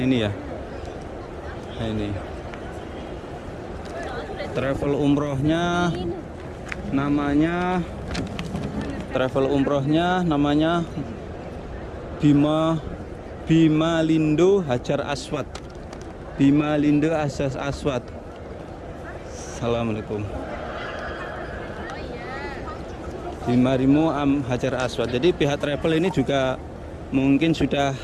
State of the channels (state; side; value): identical; both; correlation 1.00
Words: ya. Nah ini travel umrohnya namanya Bima Lindo Hajar Aswad. Bima Lindo Hajar Aswad. Assalamualaikum. Bima Lindo Hajar Aswad. Jadi pihak travel ini juga mungkin sudah